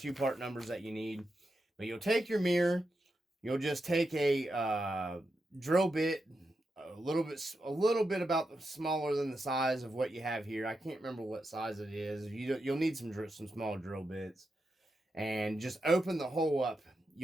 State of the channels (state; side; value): normal; both; correlation 0.87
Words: part numbers that you need. But you'll take your mirror, you'll just take a drill bit, a little bit about smaller than the size of what you have here. I can't remember what size it is. You'll need some small drill bits, and just open the hole up.